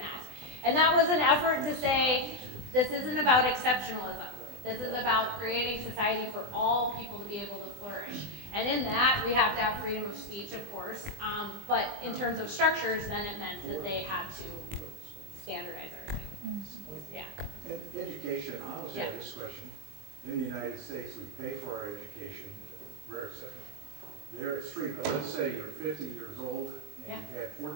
And that was an effort to say, this isn't about exceptionalism. This is about creating society for all people to be able to flourish. And in that, we have to have freedom of speech, of course. But in terms of structures, then it meant that they had to standardize everything. Yeah. And education, I always Yeah. have this question. In the United States, we pay for our education, rare exception. There it's free, but let's say you're 50 years old and you've had 4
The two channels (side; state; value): left; late; 20 ms